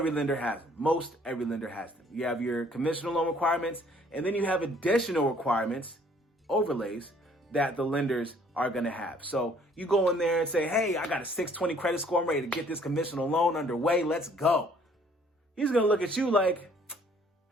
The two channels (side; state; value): both; normal; correlation 0.60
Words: lender has them. Most every lender has them. You have your conventional loan requirements, and then you have additional requirements, overlays, that the lenders are going to have. So you go in there and say, hey, I got a 620 credit score. I'm ready to get this conventional loan underway. Let's go. He's going to look at you like,